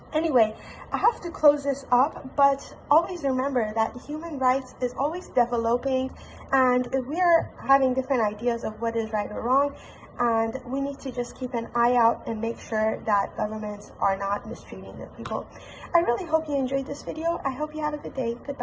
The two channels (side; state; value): both; identical; correlation 1.00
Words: Anyway, I have to close this up, but always remember that human rights is always developing, and we're having different ideas of what is right or wrong, and we need to just keep an eye out and make sure that governments are not mistreating their people. I really hope you enjoyed this video. I hope you have a good day.